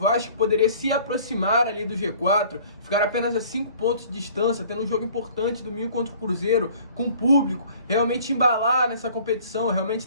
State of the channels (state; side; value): inverted; both; correlation -0.51